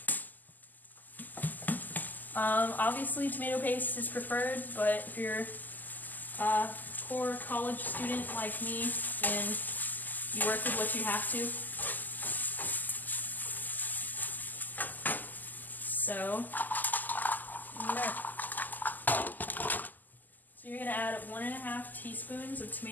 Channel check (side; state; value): right; late; 0.085 ms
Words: Obviously tomato paste is preferred, but if you're a poor college student like me, then you work with what you have to. So you're going to add 1.5 teaspoons of